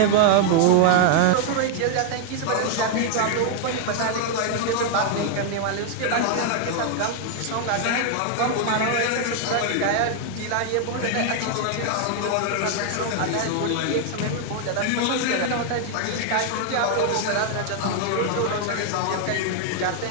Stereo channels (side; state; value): both; different; correlation 0.00